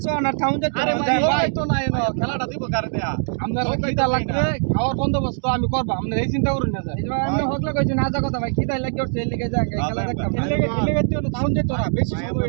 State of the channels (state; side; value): silent; left; digital silence